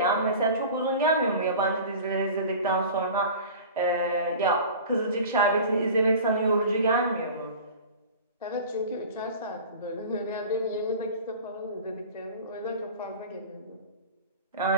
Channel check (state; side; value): inverted; both; correlation -0.38